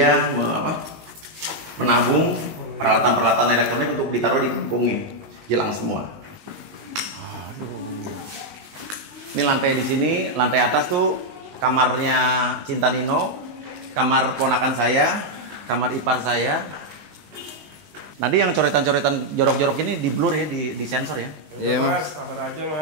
menabung peralatan-peralatan elektronik untuk ditaruh di kampungnya. Hilang semua. Ini lantai di sini, lantai atas tuh kamarnya Cinta Nino, kamar ponakan saya, kamar ipar saya. Tadi yang coretan-coretan jorok-jorok ini di blur ya, di sensor ya. Iya Mas, sabar aja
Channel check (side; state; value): left; late; 19 ms